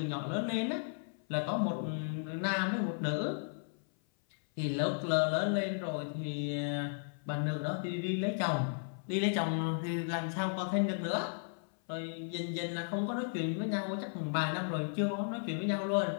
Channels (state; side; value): silent; right; 55 dB below the other